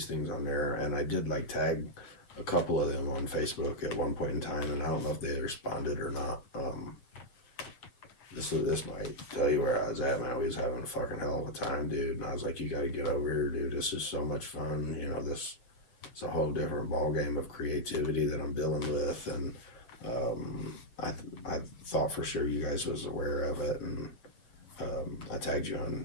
things on there, and I did like tag a couple of them on Facebook at one point in time, and I don't know if they responded or not. This might tell you where I was at, man. We was having a fucking hell of a time, dude. And I was like, you got to get over here, dude. This is so much fun. You know, it's a whole different ball game of creativity that I'm dealing with, and I thought for sure you guys was aware of it, and I tagged you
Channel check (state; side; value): late; right; 8.4 ms